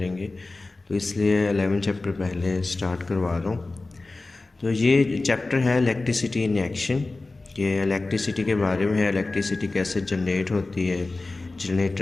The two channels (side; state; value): right; quieter; 3.3 dB